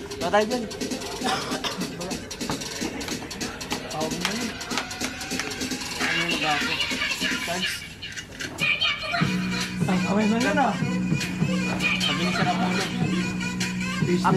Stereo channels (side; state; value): both; identical; correlation 1.00